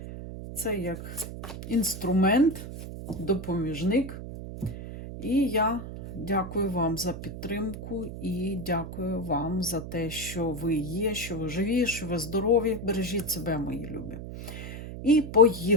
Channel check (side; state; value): right; noise; hum, 9 dB below the sound